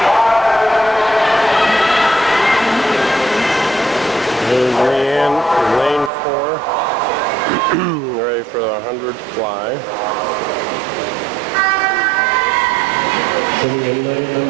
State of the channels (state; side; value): drops out; left; at 6.1 s